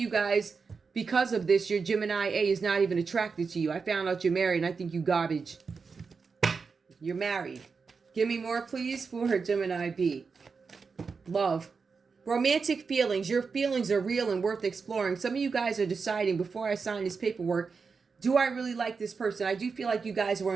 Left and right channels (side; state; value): left; quieter; 5.1 dB